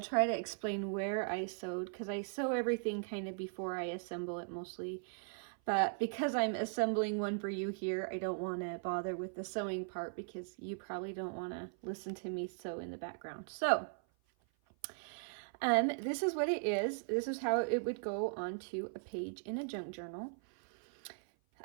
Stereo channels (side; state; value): left; silent; 52 dB below the other